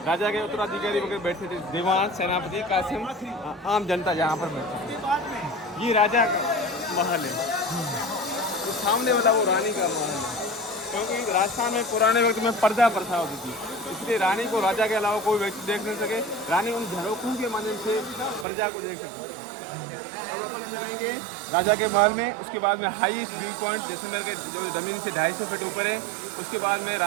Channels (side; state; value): left; drops out; at 18.4 s